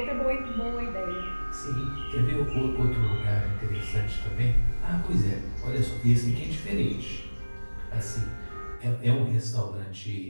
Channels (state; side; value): inverted; both; correlation -1.00